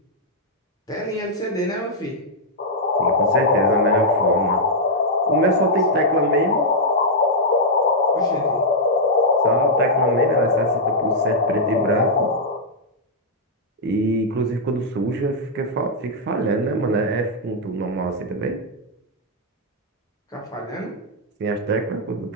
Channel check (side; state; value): both; normal; correlation -0.06